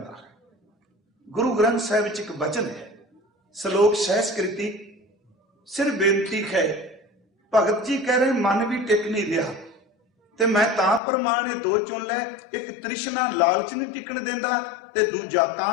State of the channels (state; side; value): drops out; right; at 11.0 s